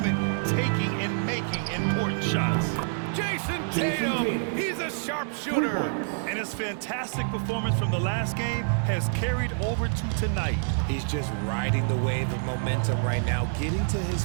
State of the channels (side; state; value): left; silent; 60 dB below the other